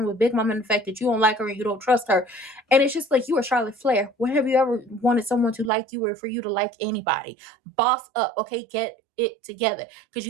with Big Mama and the fact that you don't like her and you don't trust her. And it's just like, you are Charlotte Flair. When have you ever wanted someone to like you or for you to like anybody? Boss up, okay? Get it together. Because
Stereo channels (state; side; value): drops out; left; at 5.7 s